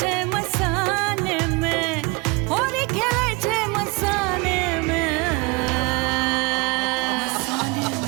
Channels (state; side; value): quieter; left; 26.7 dB